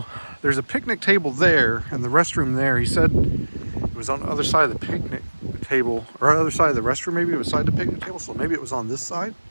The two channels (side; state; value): both; inverted; correlation -1.00